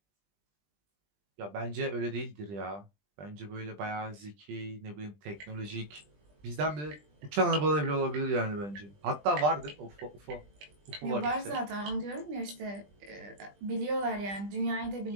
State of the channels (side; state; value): left; late; 20 ms